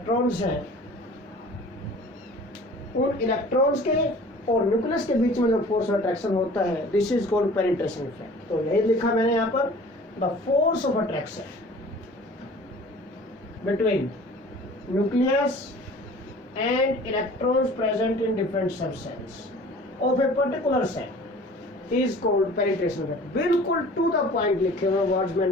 हैं, उन इलेक्ट्रॉन्स के और न्यूक्लियस के बीच में जो फोर्स ऑफ अट्रैक्शन होता है, this is called penetration effect. तो यही लिखा मैंने यहाँ पर, the force of attraction between nucleus and electrons present in different sub shells of a particular shell is called penetration effect. बिल्कुल टू द पॉइंट लिखे हुए वर्ड्स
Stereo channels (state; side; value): normal; both; correlation 0.46